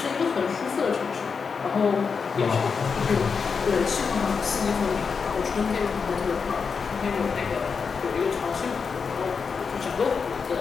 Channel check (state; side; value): quieter; right; 5.6 dB